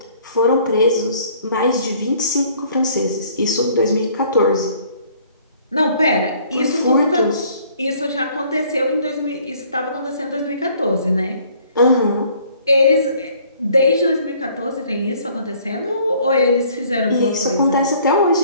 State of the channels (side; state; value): both; inverted; correlation -0.58